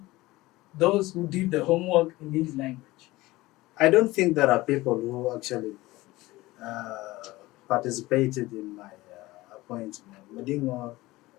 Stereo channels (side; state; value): right; quieter; 19.2 dB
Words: those who did the homework in this language. I don't think there are people who actually participated in my appointment. Mading Ngor,